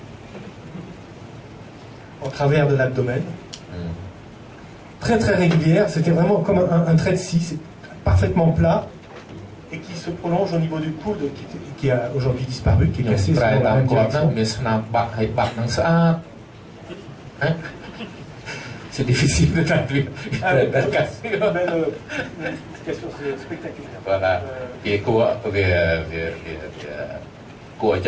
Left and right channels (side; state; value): both; identical; correlation 1.00